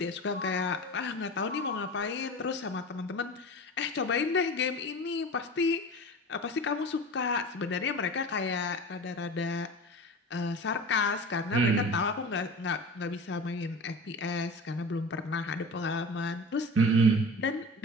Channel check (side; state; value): both; normal; correlation 0.33